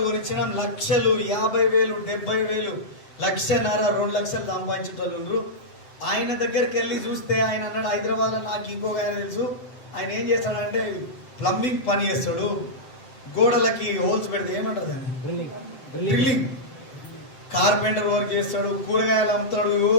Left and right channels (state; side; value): late; right; 7.7 ms